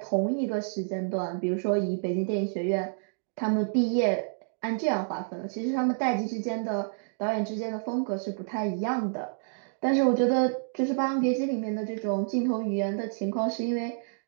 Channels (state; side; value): silent; left; digital silence